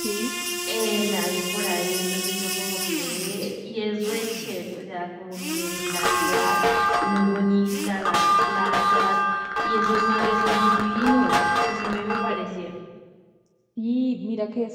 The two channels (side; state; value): both; identical; correlation 1.00